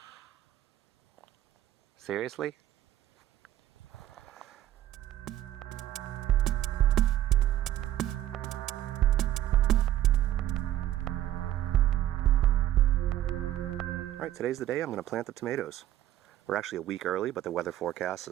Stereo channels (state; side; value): quieter; left; 12.9 dB